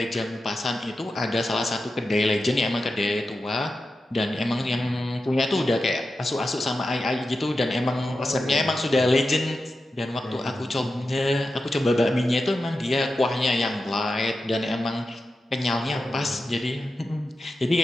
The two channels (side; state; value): both; normal; correlation 0.91